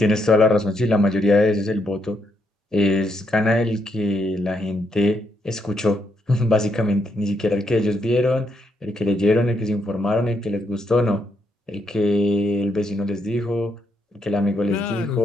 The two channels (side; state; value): both; normal; correlation 0.78